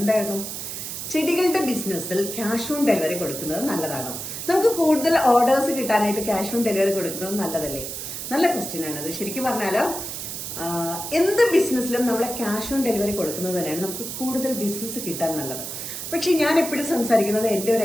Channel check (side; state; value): right; noise; hiss, 7 dB below the sound